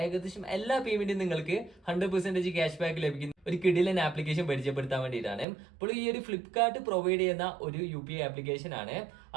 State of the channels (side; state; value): left; drops out; at 5.5 s